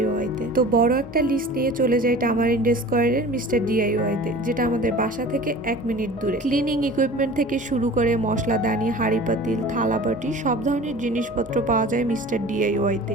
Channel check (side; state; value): both; normal; correlation 0.41